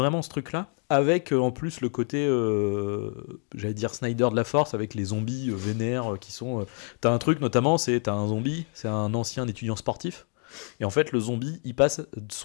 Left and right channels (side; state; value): right; quieter; 39.0 dB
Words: ce truc-là, avec en plus le côté, j'allais dire Snyder de la Force, avec les zombies vénères qui sont. T'as un truc notamment, t'as un zombie, c'est un ancien étudiant sportif, et en fait, le zombie, il passe